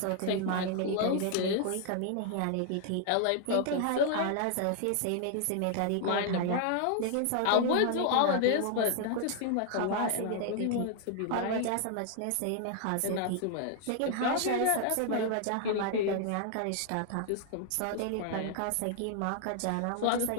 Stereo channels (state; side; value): different; both; correlation 0.00